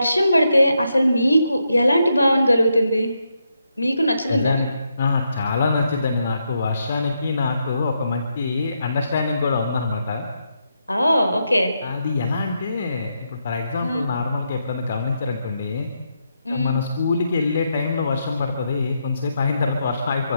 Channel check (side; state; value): both; inverted; correlation -0.82